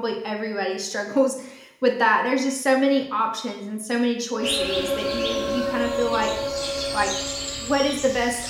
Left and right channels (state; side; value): identical; both; correlation 1.00